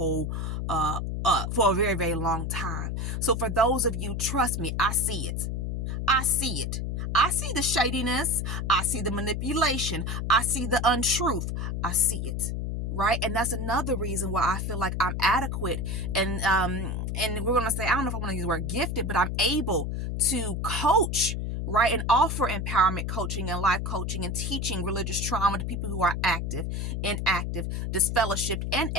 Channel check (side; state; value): left; noise; hum, 2 dB below the sound